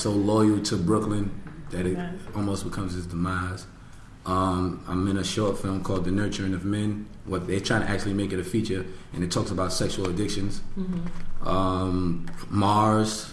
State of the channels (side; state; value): both; identical; correlation 1.00